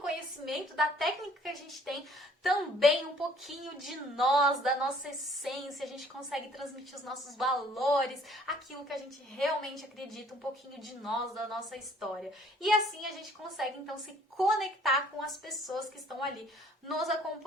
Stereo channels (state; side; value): normal; both; correlation 0.58